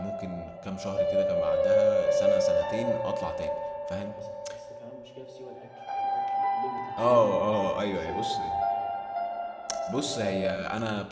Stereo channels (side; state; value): both; identical; correlation 1.00